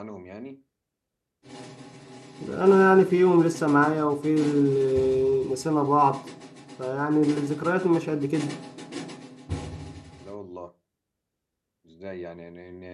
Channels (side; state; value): both; identical; correlation 1.00